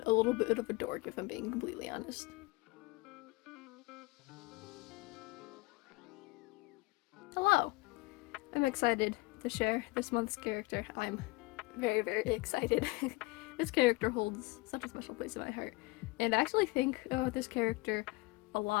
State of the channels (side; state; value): right; quieter; 23.0 dB